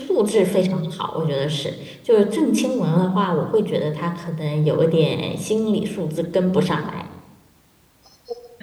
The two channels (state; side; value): identical; both; correlation 1.00